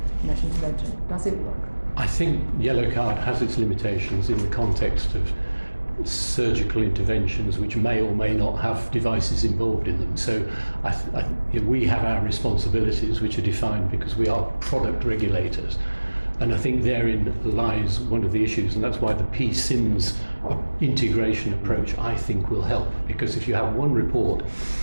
mesh intervention? Does it work? I think yellow card has its limitations in the context of surgical interventions which may or may not have devices involved in them. So we have our responsibilities which are defined because we are product regulators. And I think therein lies one of the issues, and that's why the PSIMS integration approach, I think, will help. Because if you have one report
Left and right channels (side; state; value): both; inverted; correlation -1.00